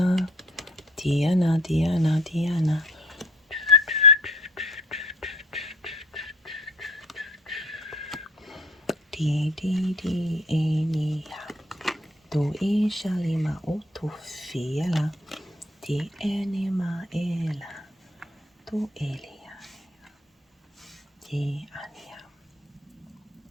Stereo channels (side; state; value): both; normal; correlation 0.54